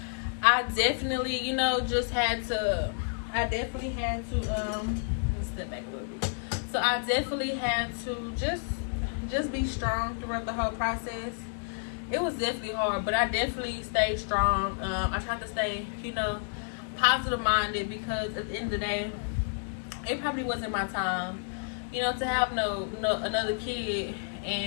I definitely, you know, just had to. Let me step back a little bit. So I definitely had to just be strong throughout the whole process. It was definitely hard, but I definitely stayed strong. I tried to stay, you know, positive minded, because at the end of the day, it probably wasn't my time, you know, to have no another kid,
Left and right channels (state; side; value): silent; right; digital silence